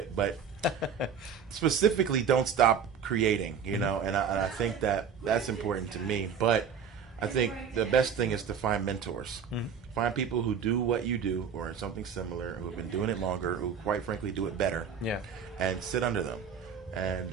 but specifically don't stop creating, you know, and I think that's important to me. But I think the best thing is to find mentors. Find people who do what you do or something similar, who have been doing it longer, who quite frankly do it better. Yeah. And sit under them. And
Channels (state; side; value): quieter; left; 6.9 dB